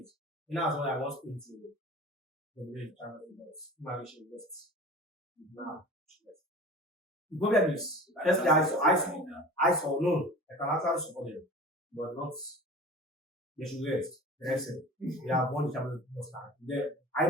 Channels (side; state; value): both; normal; correlation 0.38